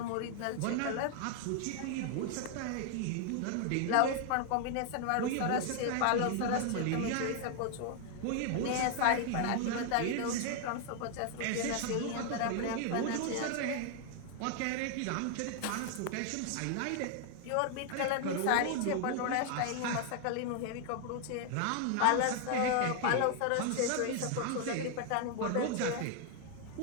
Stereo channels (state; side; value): different; both; correlation 0.00